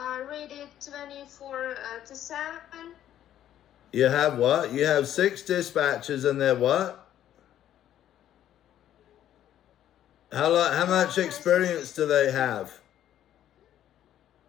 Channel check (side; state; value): right; quieter; 11.5 dB